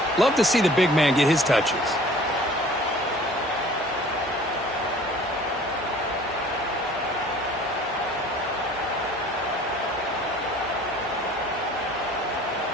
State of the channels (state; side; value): normal; both; correlation 0.49